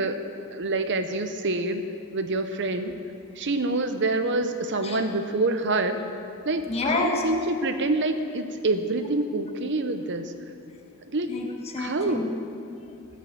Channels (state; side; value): normal; both; correlation 0.02